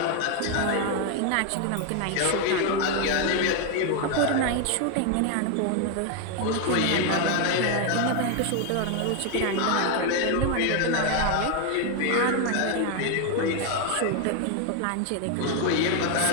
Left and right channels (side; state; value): both; different; correlation 0.01